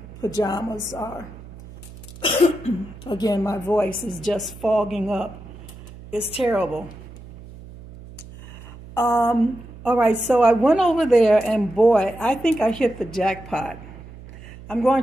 pajamas are. Again, my voice is just fogging up. It's terrible. All right, so I went over there, and boy, I think I hit the jackpot. I'm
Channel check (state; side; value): noise; right; hum, 17 dB below the sound